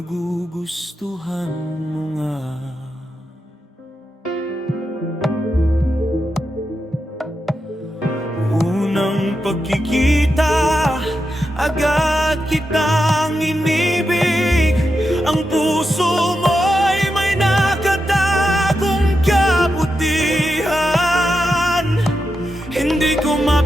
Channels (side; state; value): both; normal; correlation 0.87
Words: mo nga? Unang pagkikita, agad kitang inibig. Ang puso mo'y may nakatagong kabutihan. Hindi ko